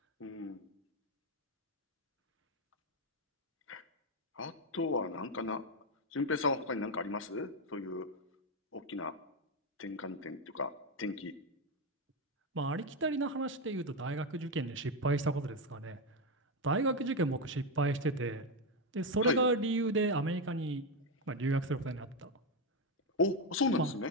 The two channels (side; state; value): both; normal; correlation 0.08